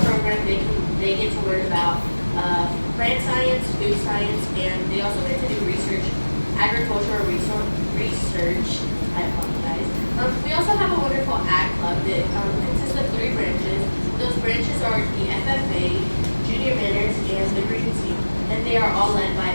program, they get to learn about plant science, food science, and they also get to do agricultural research. I apologize. We also have a wonderful ag club that consists of 3 branches. Those branches are the FFA, Junior Manners, and the Green Team, and they are all led by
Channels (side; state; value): both; inverted; correlation -1.00